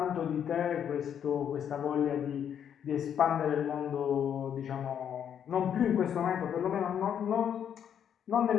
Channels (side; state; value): right; quieter; 8.8 dB